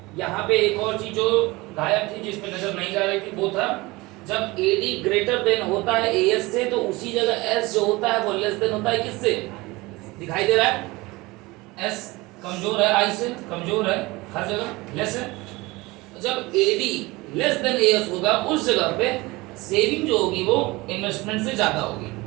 यहाँ पे एक और चीज जो गायब थी, जिस पे नजर नहीं जा रही थी, वो था जब AD ग्रेटर देन होता है AS से, तो उसी जगह S जो होता है वो लेस देन होता है किससे, दिखाई दे रहा है, S कमजोर है, I से कमजोर है, हर जगह लेस है। जब AD लेस देन AS होगा उस जगह पे सेविंग जो होगी वो इन्वेस्टमेंट से ज्यादा होगी,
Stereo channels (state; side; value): quieter; left; 22.1 dB